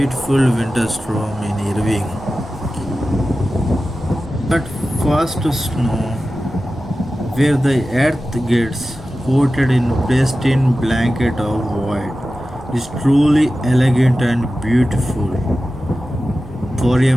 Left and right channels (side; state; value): both; normal; correlation 0.94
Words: winter storm in Irving. But first snow, where the earth gets coated in pristine blanket of white, is truly elegant and beautiful. For